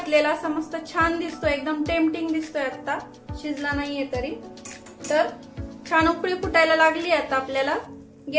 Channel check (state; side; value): identical; both; correlation 1.00